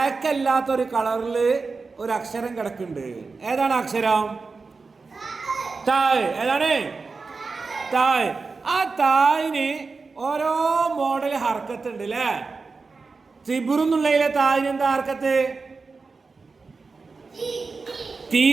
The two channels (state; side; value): quieter; left; 4.3 dB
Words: അല്ലാത്തൊരു കളറില് ഒരു അക്ഷരം കിടക്കുന്നുണ്ട്. ഏതാണ് അക്ഷരം? തായ്. ഏതാണ്? തായ്. ആ തായിന് ഓരോ മോഡൽ ഹർക്കത്ത് ഉണ്ട് അല്ലേ? തിബ്റുന്നുള്ളതിലെ തായിന് എന്താ ഹർക്കത്ത്? തീ